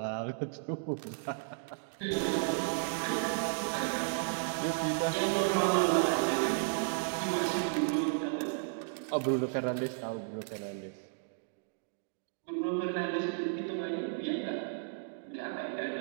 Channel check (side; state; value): left; silent; digital silence